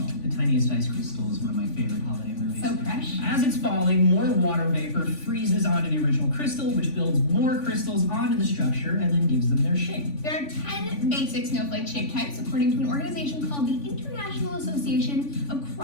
The Tiniest Ice Crystal is one of my favorite holiday movies. So fresh. As it's falling, more water vapor freezes onto the original crystal, which builds more crystals onto the structure and then gives them their shape. There are 10 basic snowflake shape types according to an organization called the International Association of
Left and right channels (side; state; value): right; late; 3.5 ms